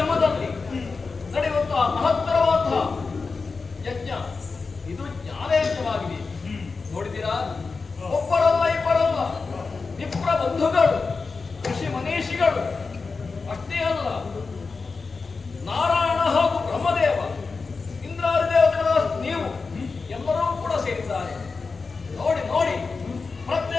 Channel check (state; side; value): quieter; right; 4.4 dB